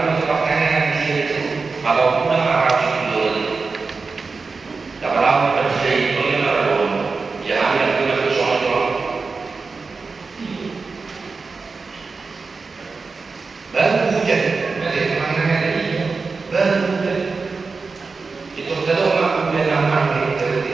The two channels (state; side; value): quieter; left; 4.4 dB